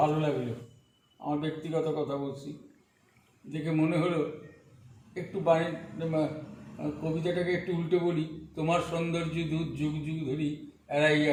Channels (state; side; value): identical; both; correlation 1.00